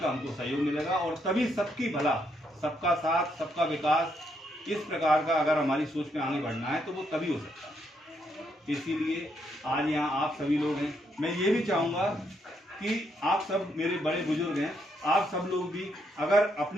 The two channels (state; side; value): normal; both; correlation 0.76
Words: हमको सहयोग मिलेगा, और तभी सबकी भला, सबका साथ, सबका विकास, इस प्रकार का अगर हमारी सोच में आगे बढ़ना है तो वो तभी हो सकता है। इसीलिए आज यहाँ आप सभी लोग हैं। मैं ये भी चाहूँगा कि आप सब मेरे बड़े बुजुर्ग हैं, आप सब लोग भी अगर